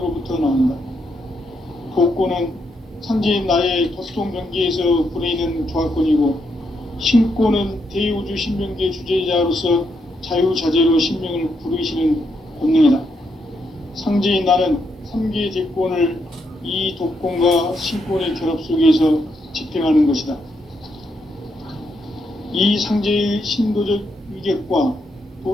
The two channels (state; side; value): normal; both; correlation 0.79